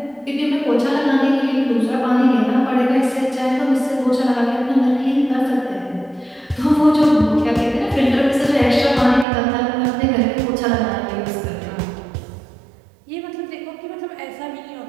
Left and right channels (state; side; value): drops out; left; at 9.2 s